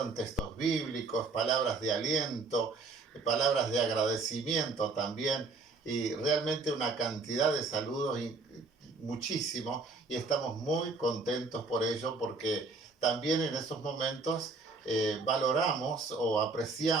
textos bíblicos, palabras de aliento, palabras de agradecimiento también, y realmente una cantidad de saludos muchísimo, y estamos muy contentos por ello, porque también en esos momentos valoramos o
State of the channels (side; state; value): left; quieter; 3.8 dB